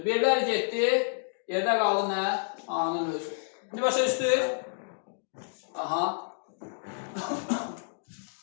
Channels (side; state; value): right; silent; digital silence